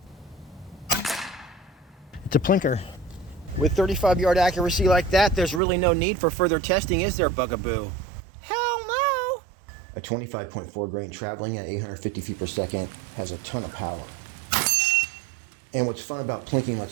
It's a plinker. With 35 yard accuracy like that, there's really no need for further testing, is there, Bugaboo? Hell no! A 25.4 grain traveling at 850 feet per second has a ton of power. And what's fun about plinking,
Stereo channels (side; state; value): left; drops out; at 5.6 s